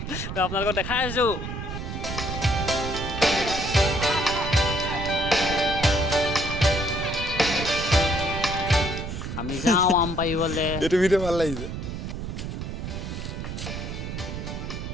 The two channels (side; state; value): right; noise; rumble, 6 dB below the sound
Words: তো আপোনালোকক দেখাই আছোঁ। আমি যাওঁ আম পাৰিবলৈ। এইটো ভিডিঅ' ভাল লাগিছে।